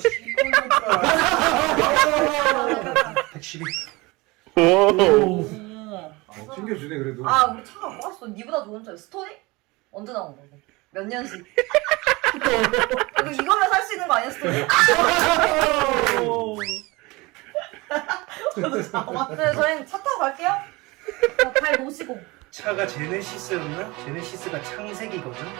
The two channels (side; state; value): left; quieter; 23.4 dB